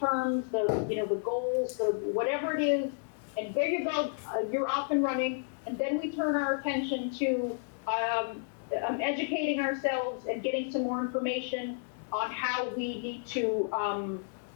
the goals, the whatever it is, and there you go, you're off and running. And then we turn our attention to educating ourselves and getting some more information on how we need to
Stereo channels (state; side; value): silent; right; digital silence